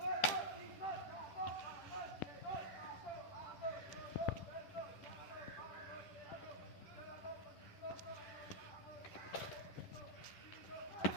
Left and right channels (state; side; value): late; right; 11 ms